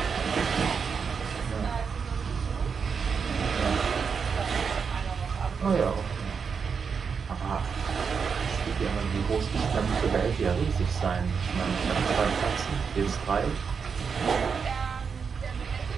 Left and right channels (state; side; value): quieter; left; 6.0 dB